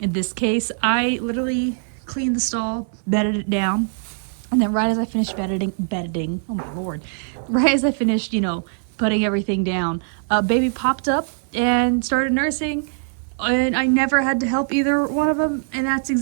this case, I literally cleaned the stall, bedded it down. And then right as I finished bedding, oh my Lord, right as I finished, you know, putting everything down, baby popped up and started nursing. And I never had to help either one of them. And that's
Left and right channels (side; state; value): left; silent; 64 dB below the other